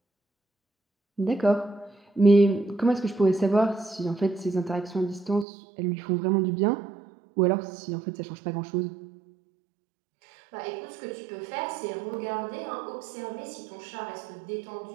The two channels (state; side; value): drops out; left; at 5.5 s